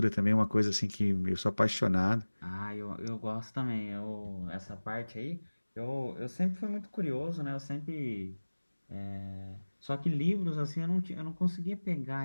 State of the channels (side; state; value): both; inverted; correlation -1.00